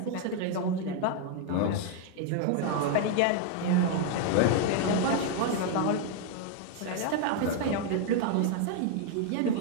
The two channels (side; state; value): both; different; correlation 0.00